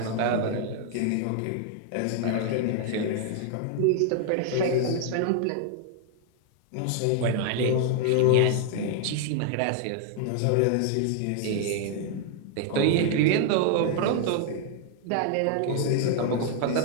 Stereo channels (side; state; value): both; different; correlation 0.00